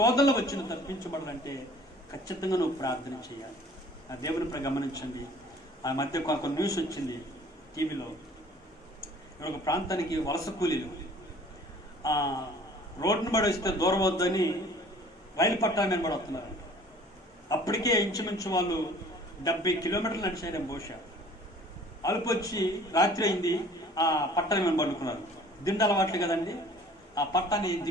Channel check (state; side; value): normal; both; correlation 0.51